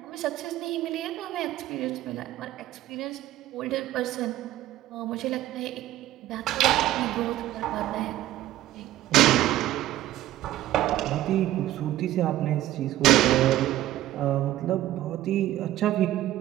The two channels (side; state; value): left; quieter; 14.4 dB